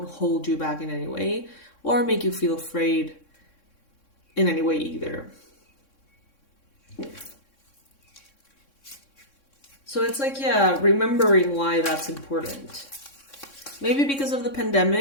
hold you back in any way or make you feel afraid in any way either. So it's like, yeah, remembering why that's important. Maybe because of the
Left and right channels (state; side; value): late; right; 3.6 ms